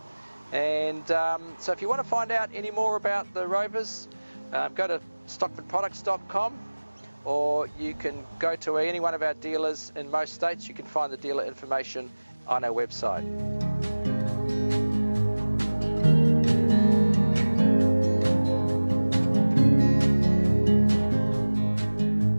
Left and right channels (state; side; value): inverted; both; correlation -1.00